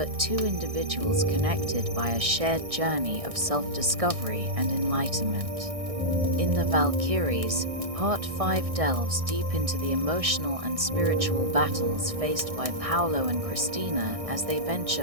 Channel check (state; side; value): late; left; 1.6 ms